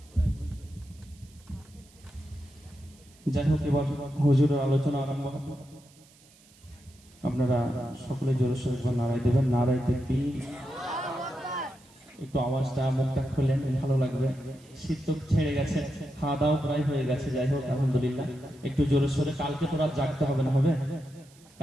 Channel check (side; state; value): right; noise; hiss, 27 dB below the sound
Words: যাই হোক, এবার হুজুরের আলোচনা আরম্ভ হবে। আপনারা সকলে জোরে সোরে নারায় দেবেন, নারায় তাকবীর। একটু আওয়াজটা মুখটা খুলেন, ভালো লাগবে। শীত তো ছেড়ে গেছে, খাওয়া দাওয়া প্রায় হয়ে গেছে। যাই হোক, আলহামদুলিল্লাহ। একটু জোরে সোরে, কালকে তো রাত জাগতে হবে না, হবে?